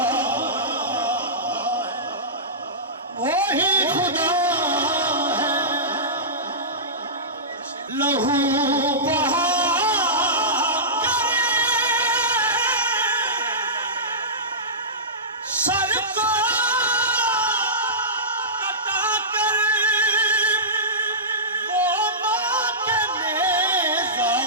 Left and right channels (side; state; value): both; normal; correlation -0.19